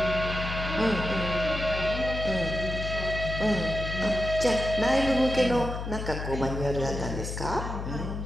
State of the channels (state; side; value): noise; left; hum, 5 dB below the sound